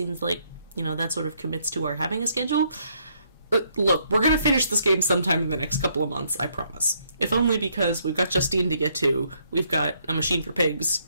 like, that sort of commits to our having a schedule. Look, we're going to finish this game sometime in the next couple of months, I promise. If only because we've got Justine to get to, we've got A Machine for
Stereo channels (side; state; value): both; inverted; correlation -0.71